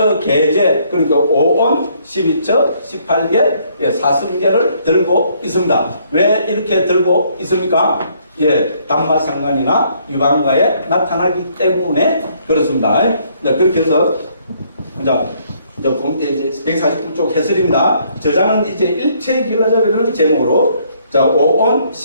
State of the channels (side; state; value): both; inverted; correlation -0.66